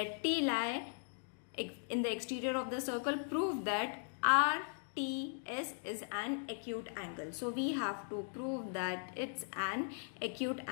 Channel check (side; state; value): right; silent; digital silence